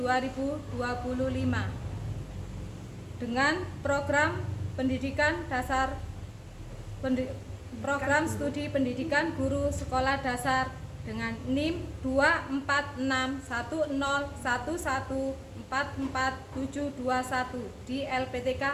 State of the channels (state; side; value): identical; both; correlation 1.00